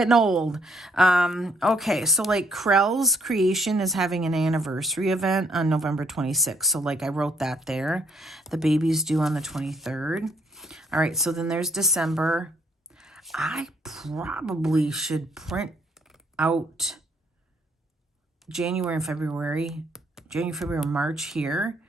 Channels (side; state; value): both; normal; correlation 0.69